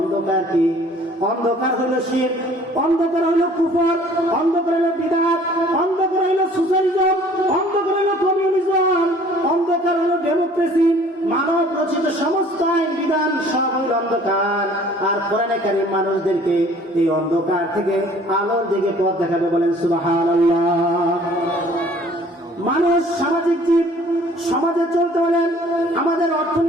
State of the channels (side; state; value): both; normal; correlation 0.54